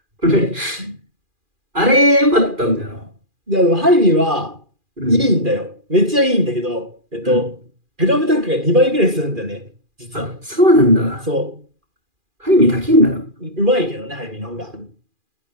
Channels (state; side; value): late; left; 2.4 ms